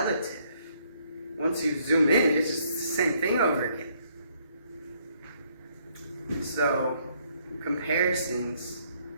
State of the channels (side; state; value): both; inverted; correlation -0.69